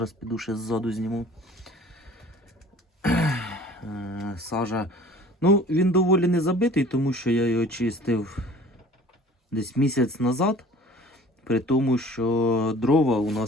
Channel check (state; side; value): normal; both; correlation 0.47